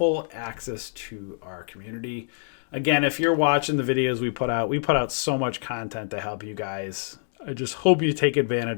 access to our community. Again, if you're watching the videos we put out so much content to help you guys. I just hope you take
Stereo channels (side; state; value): right; silent; digital silence